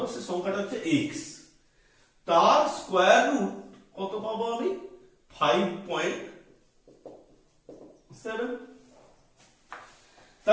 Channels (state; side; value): identical; both; correlation 1.00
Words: সে সংখ্যাটা হচ্ছে x, তার স্কয়ার রুট কত পাবো আমি? 5.7 7।